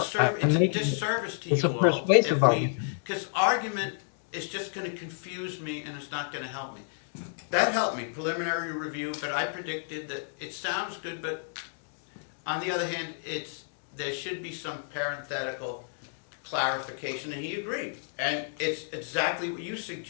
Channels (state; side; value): silent; right; digital silence